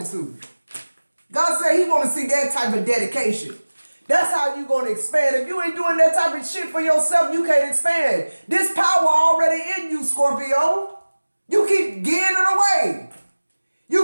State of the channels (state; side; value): inverted; both; correlation -1.00